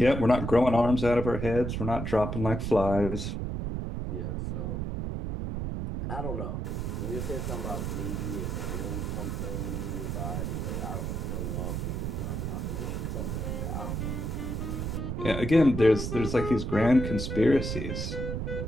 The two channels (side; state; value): right; noise; rumble, 3 dB below the sound